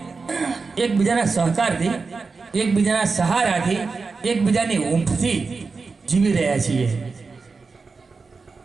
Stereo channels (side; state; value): left; quieter; 4.4 dB